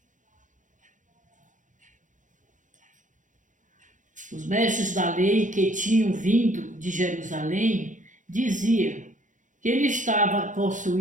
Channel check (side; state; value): left; late; 0.37 ms